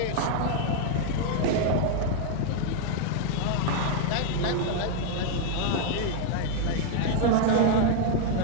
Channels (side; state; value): both; different; correlation 0.00